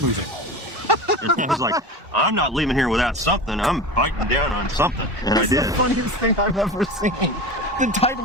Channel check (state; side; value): normal; both; correlation 0.30